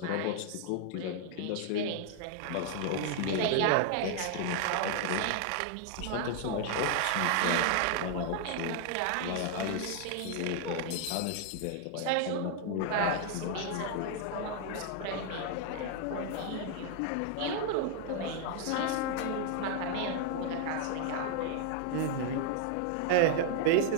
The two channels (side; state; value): both; different; correlation 0.00